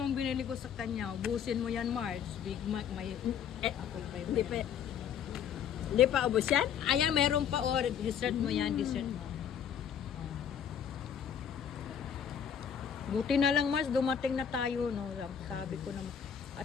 binili ko sa kanya. Ubusin mo yan, Marge. Big Mac, may... Apple pie ba yan? Hindi pa ubos yan? Ayan, meron pa. O, dessert mo yan, dessert mo. Buti na lang, Marge, dumating na tayo, no? Sabi ko na...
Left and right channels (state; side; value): quieter; right; 8.3 dB